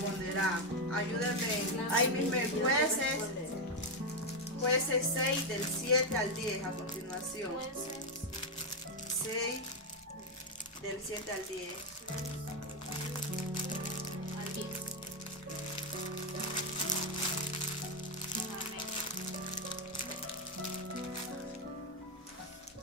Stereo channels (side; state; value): both; normal; correlation 0.04